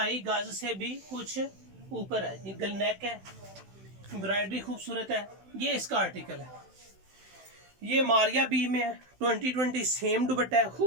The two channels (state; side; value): late; left; 16 ms